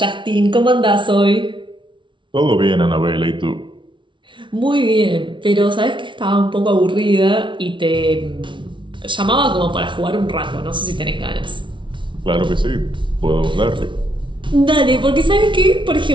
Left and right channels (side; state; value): left; late; 0.24 ms